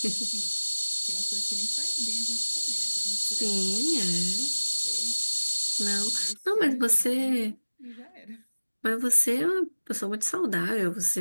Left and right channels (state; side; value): inverted; both; correlation -1.00